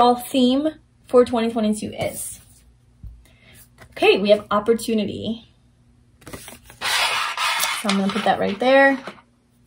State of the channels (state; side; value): identical; both; correlation 1.00